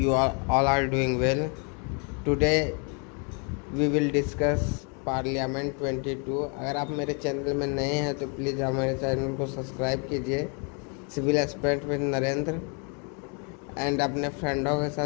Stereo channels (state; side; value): quieter; right; 36.7 dB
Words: all are doing well. Today we will discuss parliament 22। अगर आप मेरे channel में नए हैं तो प्लीज़ हमारे चैनल को सब्सक्राइब कीजिए, civil expert with Narendra, and अपने फ्रेंडों के